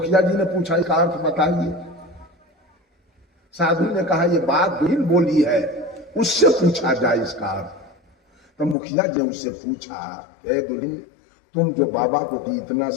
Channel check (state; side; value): drops out; right; at 8.8 s